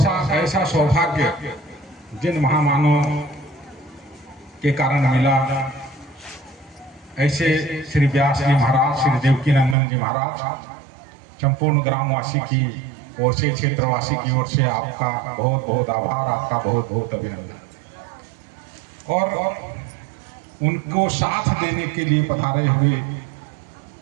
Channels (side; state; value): left; drops out; at 9.8 s